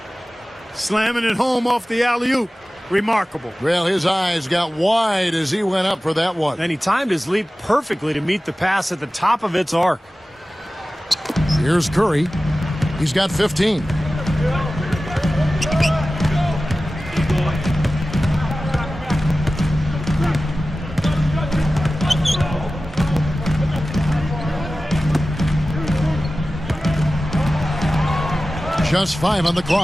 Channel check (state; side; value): normal; both; correlation 0.96